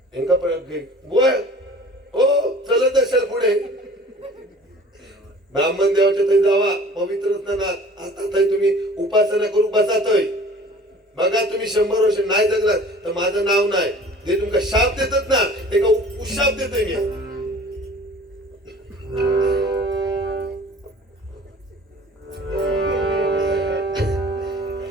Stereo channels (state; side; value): normal; both; correlation 0.47